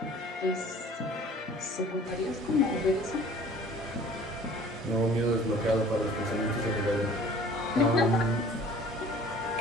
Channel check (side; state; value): both; normal; correlation 0.49